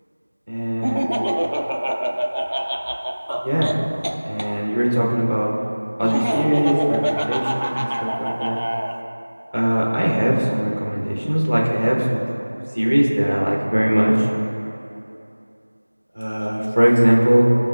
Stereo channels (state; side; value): inverted; both; correlation -1.00